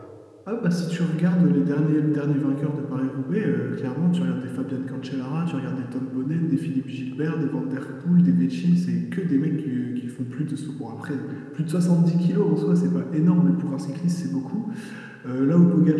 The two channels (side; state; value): both; identical; correlation 1.00